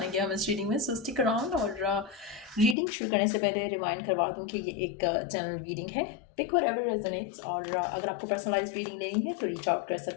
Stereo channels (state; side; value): drops out; right; at 2.8 s